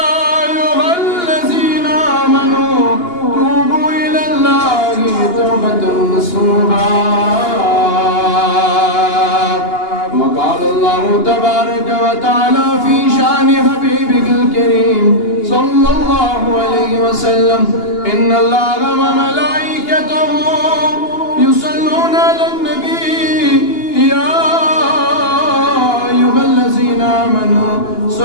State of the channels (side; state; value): right; late; 2.8 ms